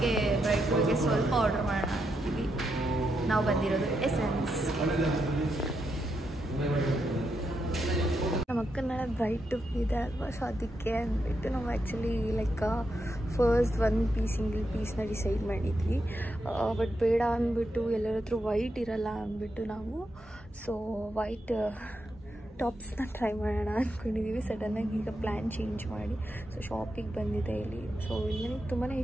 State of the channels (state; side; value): normal; both; correlation 0.83